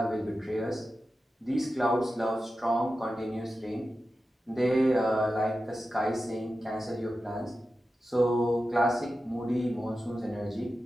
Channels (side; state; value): both; normal; correlation 0.92